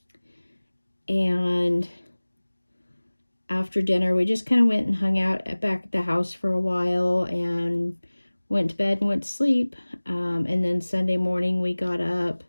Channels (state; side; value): inverted; both; correlation -1.00